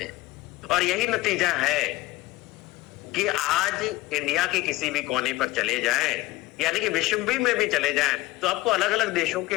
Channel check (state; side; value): quieter; right; 18.9 dB